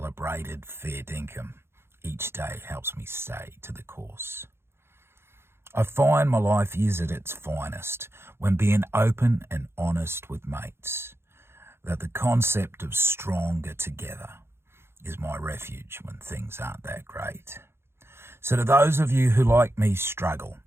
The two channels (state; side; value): late; left; 0.12 ms